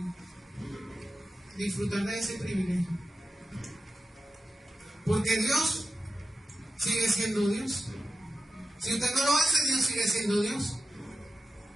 disfrutar de ese privilegio. Porque Dios sigue siendo Dios. Si usted no lo hace, Dios sigue siendo Dios.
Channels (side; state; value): both; normal; correlation 0.91